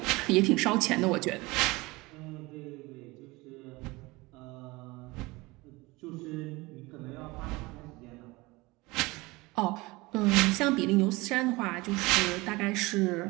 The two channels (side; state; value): left; quieter; 22.6 dB